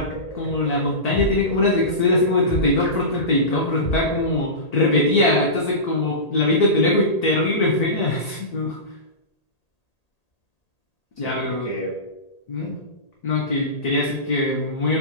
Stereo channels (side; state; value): right; late; 1.8 ms